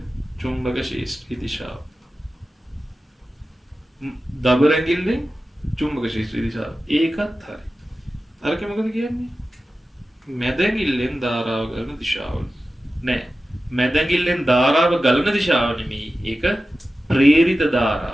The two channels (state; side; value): normal; both; correlation 0.94